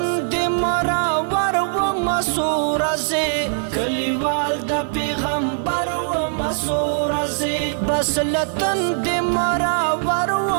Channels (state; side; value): silent; left; digital silence